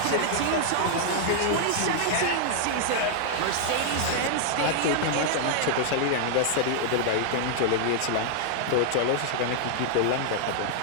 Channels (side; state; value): both; different; correlation -0.01